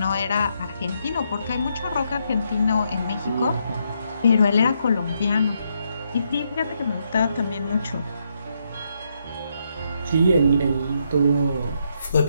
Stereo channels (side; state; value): both; inverted; correlation -0.78